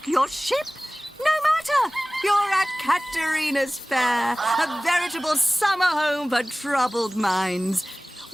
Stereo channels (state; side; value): normal; both; correlation 0.98